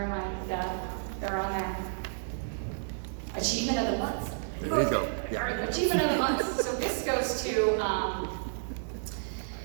am I? They're on there. Achievement of the month. There you go. Yeah. All right, achievement of the month. So this goes to,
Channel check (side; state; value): left; silent; 57 dB below the other